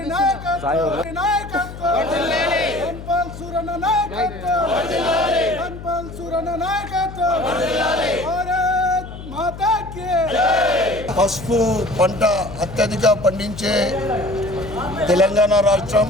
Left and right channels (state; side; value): noise; left; hum, 12 dB below the sound